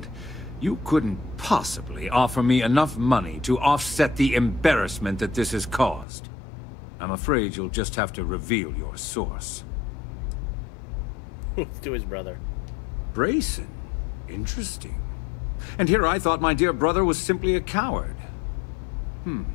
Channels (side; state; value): right; drops out; at 6.1 s